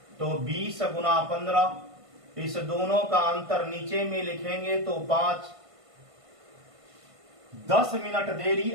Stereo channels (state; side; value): late; left; 1.5 ms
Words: तो 20 गुना 15, इस दोनों का अंतर नीचे में लिखेंगे तो 5। 10 मिनट देरी